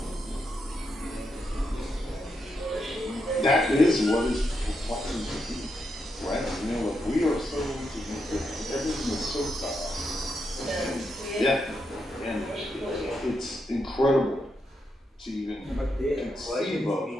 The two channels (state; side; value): normal; both; correlation 0.83